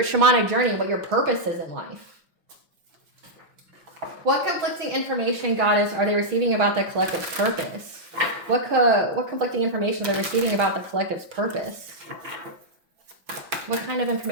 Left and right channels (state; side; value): late; left; 5.8 ms